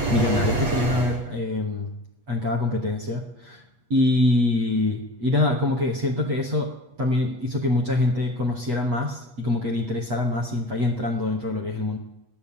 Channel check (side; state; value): left; late; 8.3 ms